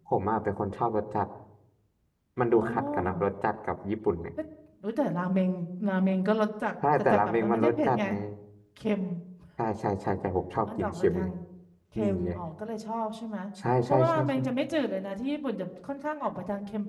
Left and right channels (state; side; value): identical; both; correlation 1.00